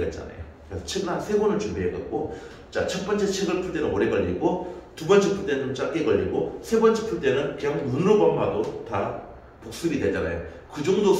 있잖아요. 그래서 책을 한 3권을 준비해갖고 자, 첫 번째 책을 풀 때는 오래 걸리고 두 번째 풀 때는 좀 짧게 걸리고 세 번째 풀 때는 그냥 눈으로만 봐도 다 복습이 되잖아요. 그 정도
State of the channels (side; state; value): both; identical; correlation 1.00